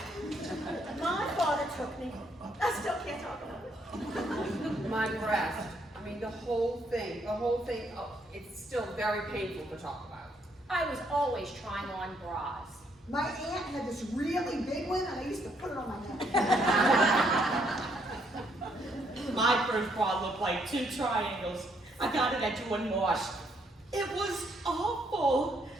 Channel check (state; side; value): normal; both; correlation 0.71